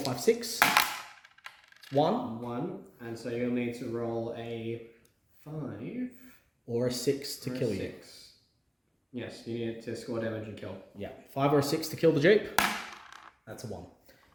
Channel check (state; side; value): identical; both; correlation 1.00